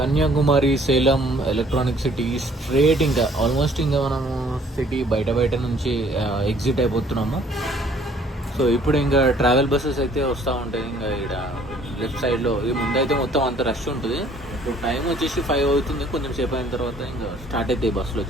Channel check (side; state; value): both; normal; correlation 0.58